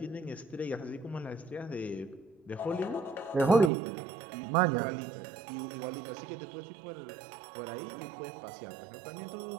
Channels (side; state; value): left; drops out; at 3.7 s